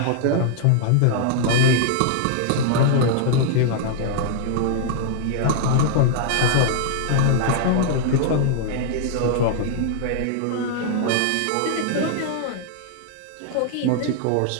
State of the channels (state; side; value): different; both; correlation -0.01